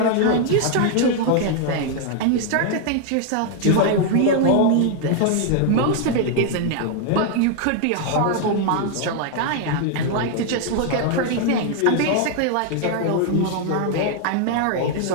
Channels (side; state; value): both; different; correlation 0.00